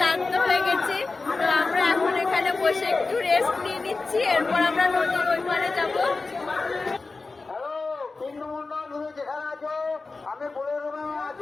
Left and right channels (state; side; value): quieter; right; 3.8 dB